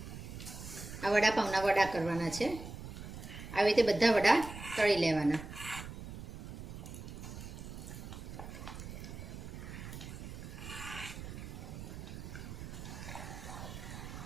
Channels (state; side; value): noise; right; rumble, 10 dB below the sound